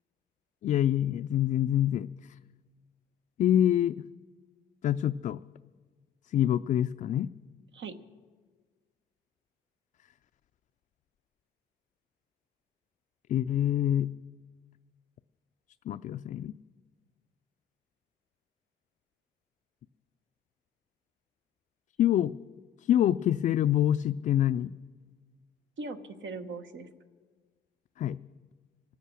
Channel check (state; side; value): quieter; right; 10.7 dB